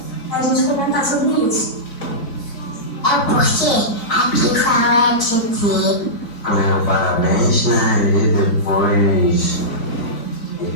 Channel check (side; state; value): right; late; 3.8 ms